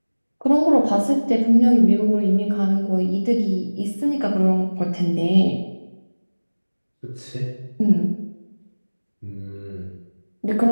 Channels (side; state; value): both; inverted; correlation -1.00